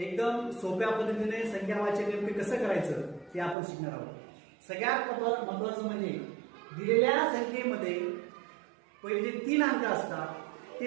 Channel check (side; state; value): left; drops out; at 3.6 s